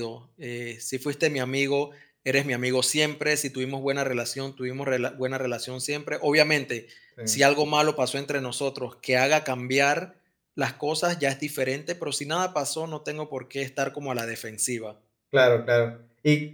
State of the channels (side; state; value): both; identical; correlation 1.00